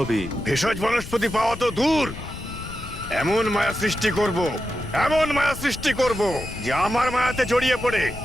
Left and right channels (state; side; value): noise; left; rumble, 11 dB below the sound